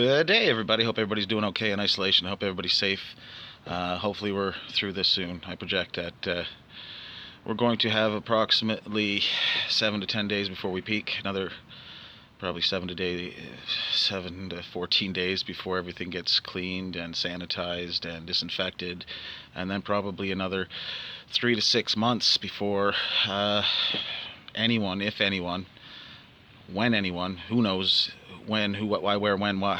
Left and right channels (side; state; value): both; identical; correlation 1.00